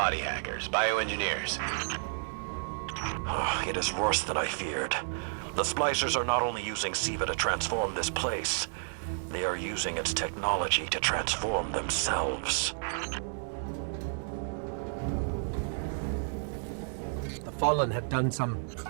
hackers, bioengineers. It is worse than I feared. The Splicers are not only using Siva to transform this place, they are using its technology to transform themselves. The Fallen have done some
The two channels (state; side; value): silent; left; digital silence